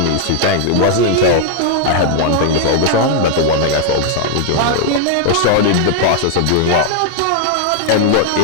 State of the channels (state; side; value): different; both; correlation 0.00